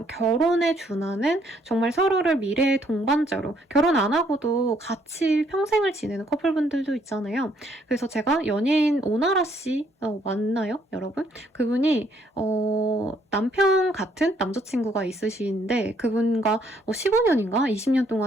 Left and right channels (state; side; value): normal; both; correlation 0.68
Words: 결혼에 준하는 정말 서로를 미래의 동반자로 결혼 안 하고도 같이 평생을 지내는 커플분들도 있잖아요. 그래서 제가 연예인 오나라 씨 맞나요, 여러분? 그분이 남편 같은 남자친구가 있으신데 그분과 15년인가 20년